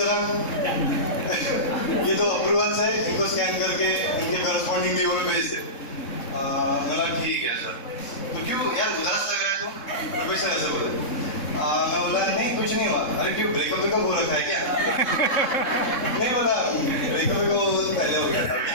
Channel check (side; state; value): right; late; 3.7 ms